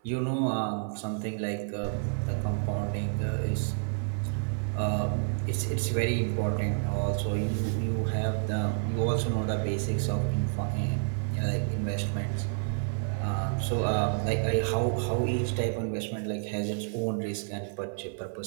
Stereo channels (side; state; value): left; silent; 58 dB below the other